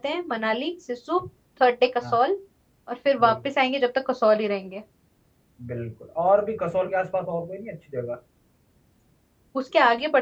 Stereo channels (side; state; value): both; identical; correlation 1.00